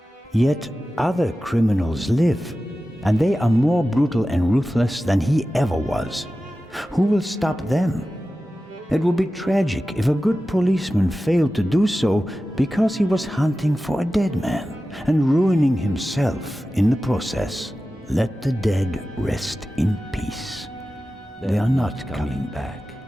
Yet other criminals live, and they are more brutal and ruthless than he ever was. Who will stop them? It would be tragic if a good policeman failed to do so because he was hunting for a dead man and ruining himself in the process. Let the dead rest in peace. They are not coming back.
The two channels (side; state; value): both; normal; correlation 0.94